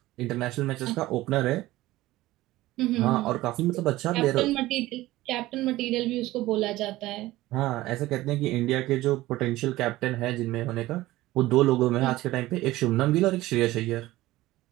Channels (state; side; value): quieter; left; 17.3 dB